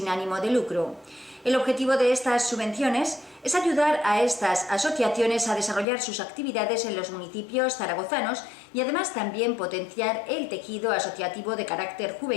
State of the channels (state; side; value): drops out; right; at 5.9 s